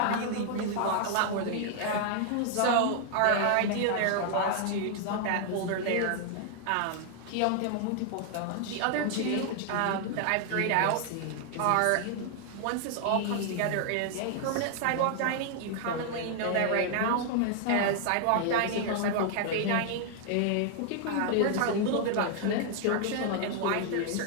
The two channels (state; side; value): different; both; correlation 0.00